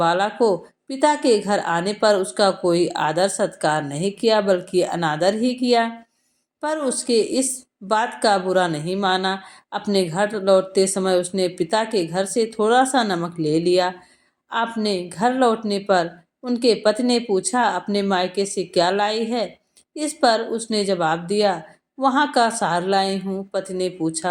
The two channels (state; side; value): identical; both; correlation 1.00